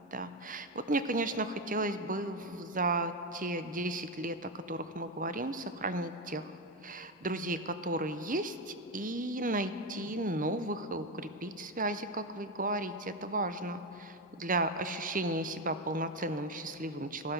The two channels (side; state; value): both; normal; correlation 0.13